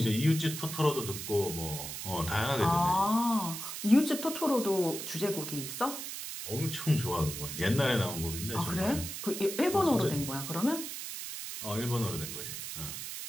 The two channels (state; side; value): noise; right; hiss, 7 dB below the sound